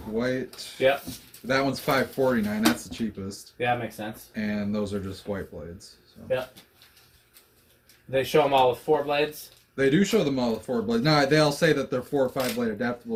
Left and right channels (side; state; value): both; identical; correlation 1.00